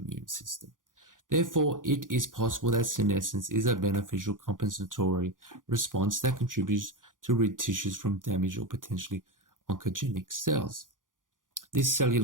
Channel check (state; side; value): late; left; 0.89 ms